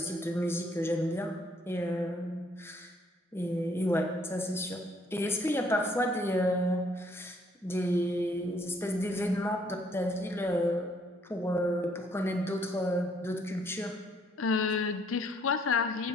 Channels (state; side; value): normal; both; correlation 0.66